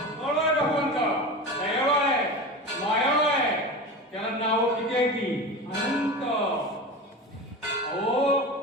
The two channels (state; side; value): normal; both; correlation 0.28